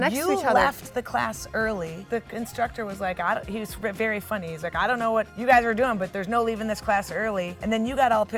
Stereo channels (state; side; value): identical; both; correlation 1.00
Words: to each other. No, you left the class early. The instructor was like, he was very funny. He's like, I don't know what you guys are doing, but there's no leaving this class early. And then you got all